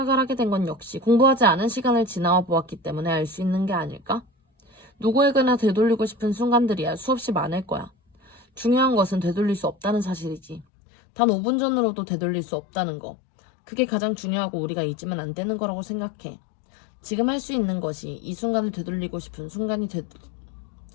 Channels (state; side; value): drops out; right; at 10.7 s